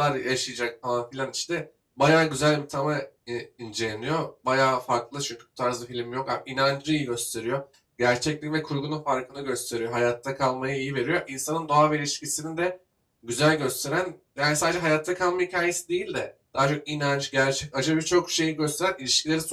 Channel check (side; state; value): both; identical; correlation 1.00